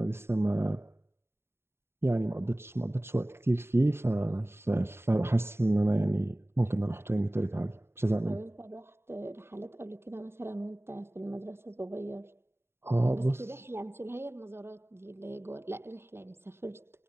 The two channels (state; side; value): late; left; 0.12 ms